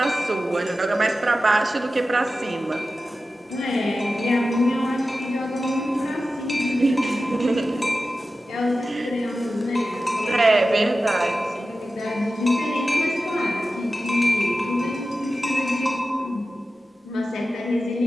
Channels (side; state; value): both; normal; correlation 0.93